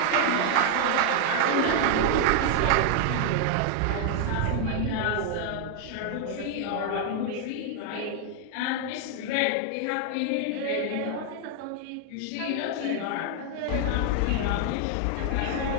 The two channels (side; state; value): both; different; correlation 0.00